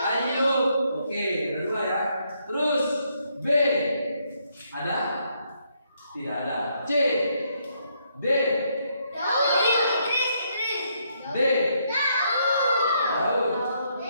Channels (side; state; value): both; inverted; correlation -0.74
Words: Ayub. Oke, ada dua ya. Terus B. Ada? Tidak ada. C. D. D. Daud.